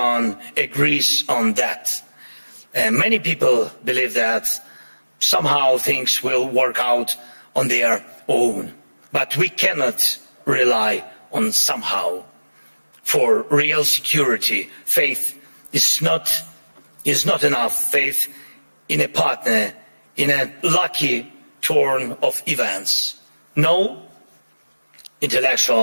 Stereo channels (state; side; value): inverted; both; correlation -1.00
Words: agrees on that. And many people believe that somehow things will work out on their own. But we cannot rely on somehow. For real security, faith is not enough. Faith in a partner, in a lucky turn of events. No